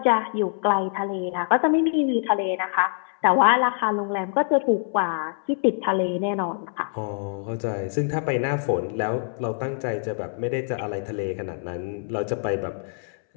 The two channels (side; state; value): right; silent; 62 dB below the other